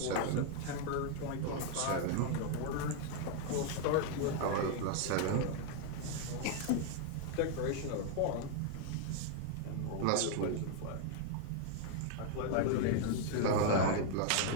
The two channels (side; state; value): both; different; correlation 0.00